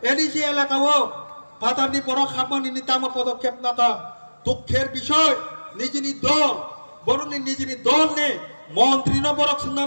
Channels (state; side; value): inverted; both; correlation -1.00